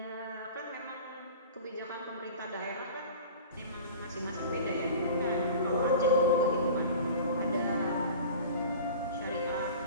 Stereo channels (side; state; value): both; inverted; correlation -0.38